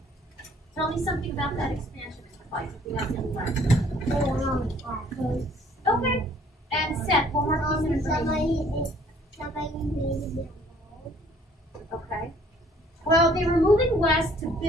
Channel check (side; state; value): both; normal; correlation 0.59